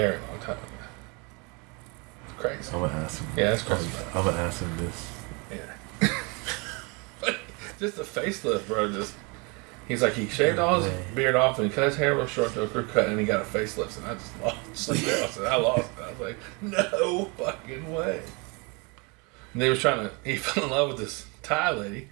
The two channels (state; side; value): quieter; left; 30.3 dB